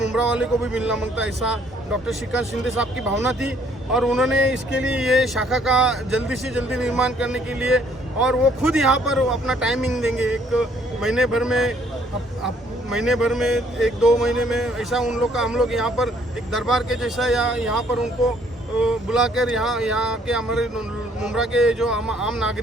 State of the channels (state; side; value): normal; both; correlation 0.64